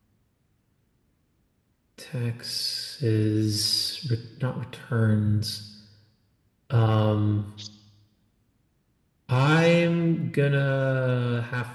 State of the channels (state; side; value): identical; both; correlation 1.00